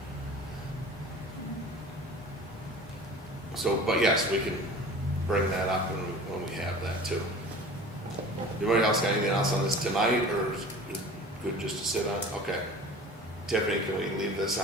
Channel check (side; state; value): both; normal; correlation 0.41